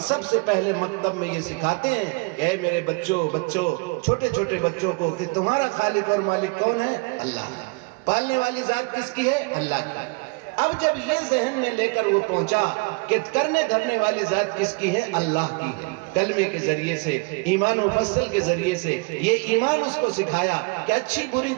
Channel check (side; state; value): left; quieter; 30.1 dB